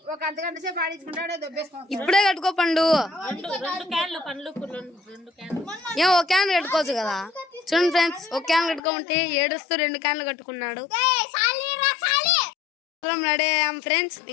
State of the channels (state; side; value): drops out; right; at 8.8 s